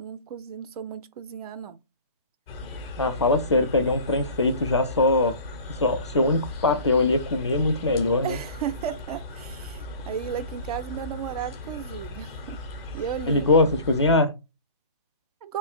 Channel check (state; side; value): inverted; both; correlation -0.41